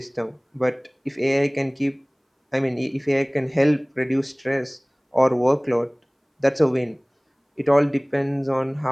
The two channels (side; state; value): both; identical; correlation 1.00